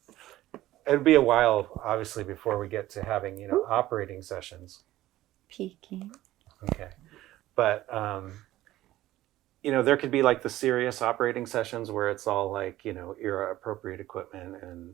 it'd be a while, obviously, before we get to having, you know, operating sessions. Peeking. Okay. But, you know, there could be like the serious operating sessions where it's all like, you know, era appropriate equipment and,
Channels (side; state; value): left; quieter; 15.3 dB